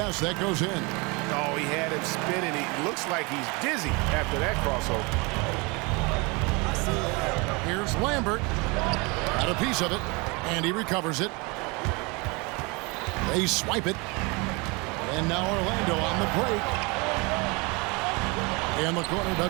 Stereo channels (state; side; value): quieter; left; 28.0 dB